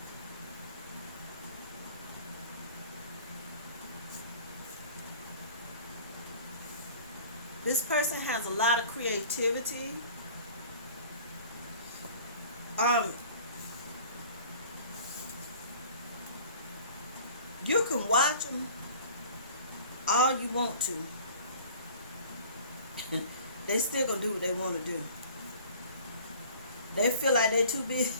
This person has a lot of creativity. Um, you can watch them all you want to. They still gonna do what they want to do. They feel like they're too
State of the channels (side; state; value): both; inverted; correlation -0.47